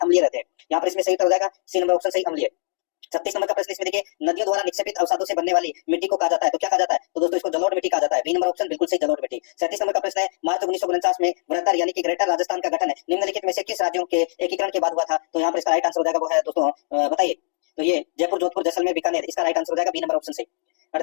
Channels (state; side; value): silent; right; digital silence